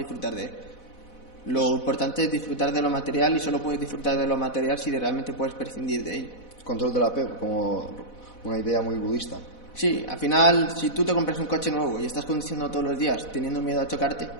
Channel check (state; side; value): late; right; 4.1 ms